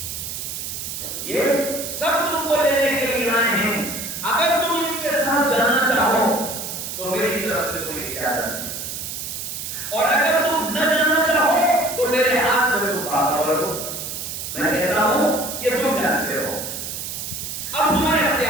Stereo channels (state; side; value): noise; right; hiss, 6 dB below the sound